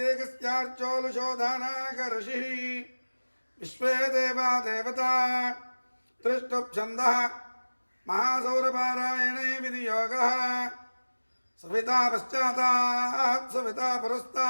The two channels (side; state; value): both; inverted; correlation -1.00